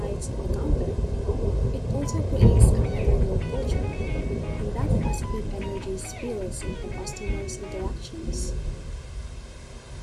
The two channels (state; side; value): identical; both; correlation 1.00